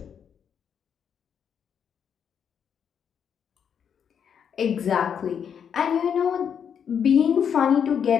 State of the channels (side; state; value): right; quieter; 7.8 dB